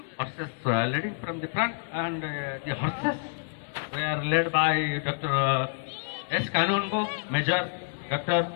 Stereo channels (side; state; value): right; silent; 59 dB below the other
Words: Horses leading from the front, and the horses were led by Dr. S. Kanungo, Major Dr.